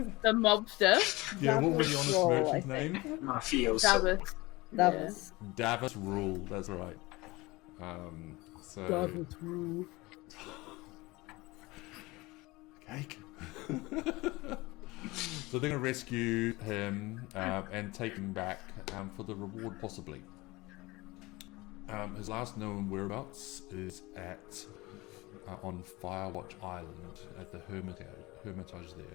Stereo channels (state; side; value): quieter; right; 21.9 dB